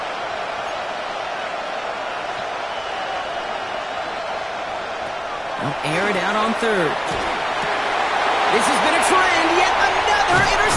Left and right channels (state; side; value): identical; both; correlation 1.00